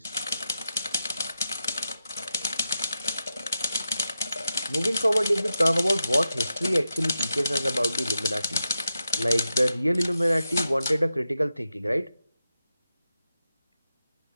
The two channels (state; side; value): inverted; both; correlation -0.88